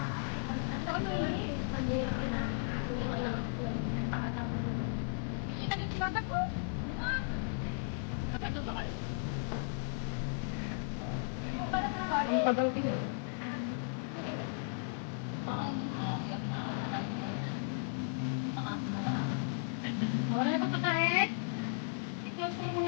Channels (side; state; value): right; silent; 54 dB below the other